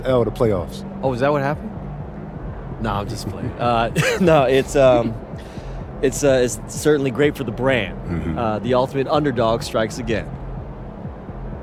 L to playoffs? Oh, is that what happened? No, I'm just playing. No, it's certainly great for the brand. Mm-hmm. The ultimate underdog strikes again.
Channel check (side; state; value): both; identical; correlation 1.00